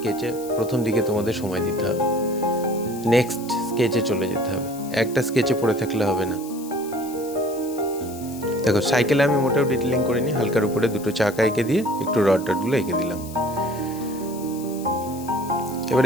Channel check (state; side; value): noise; left; hiss, 17 dB below the sound